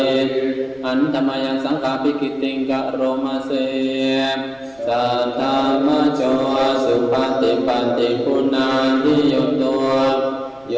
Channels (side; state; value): right; noise; rumble, 30 dB below the sound